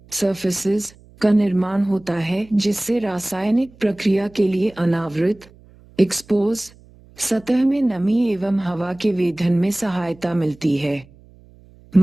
सर्फेसेस का निर्माण होता है, जिससे रासायनिक प्रक्रिया के लिए अनावृत एक्सपोज सतह में नमी एवं हवा के वेधन में सहायता मिलती है।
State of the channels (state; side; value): noise; right; hum, 26 dB below the sound